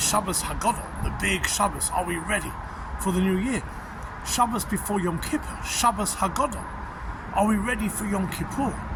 Shabbos Haggadah, the big Shabbos. Are we ready for the new year? Shabbos before Yom Kippur, Shabbos Haggadah. Are we ready for Yom Kippur?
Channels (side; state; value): both; identical; correlation 1.00